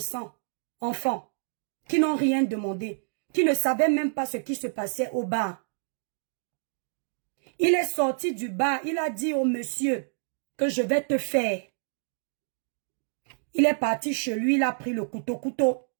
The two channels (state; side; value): silent; left; digital silence